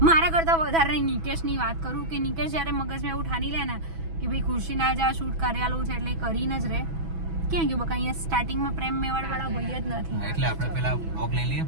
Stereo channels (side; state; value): left; late; 6.1 ms